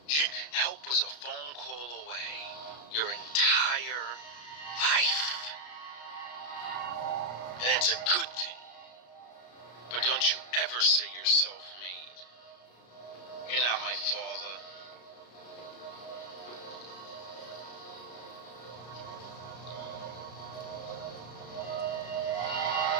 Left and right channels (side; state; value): right; late; 33 ms